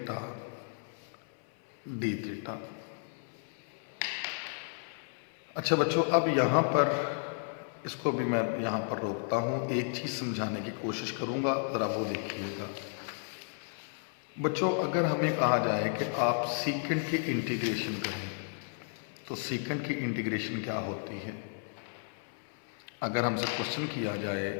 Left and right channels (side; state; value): right; silent; 56 dB below the other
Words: D theta. अच्छा बच्चों, अब यहाँ पर इसको भी मैं यहाँ पर रोकता हूँ, एक चीज़ समझाने की कोशिश करूँगा, ज़रा वो देखिएगा। बच्चों, अगर हमें कहा जाए कि आप सीकंड की इंटीग्रेशन करें तो सीकंड की इंटीग्रेशन क्या होती है। अगर हमसे क्वेश्चन किया जाए